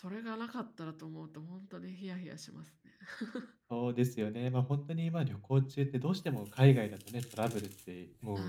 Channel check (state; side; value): identical; both; correlation 1.00